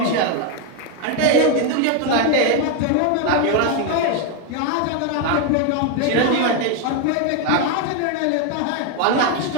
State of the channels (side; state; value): both; different; correlation 0.01